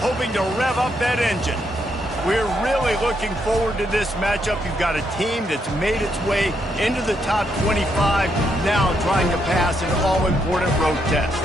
to rev up that engine. We're really looking forward to this matchup. You've got a team that's made its way into the top 25, now trying to pass an all-important road test.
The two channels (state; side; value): normal; both; correlation 0.77